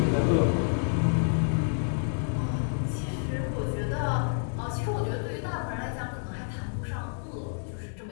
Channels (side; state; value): right; silent; digital silence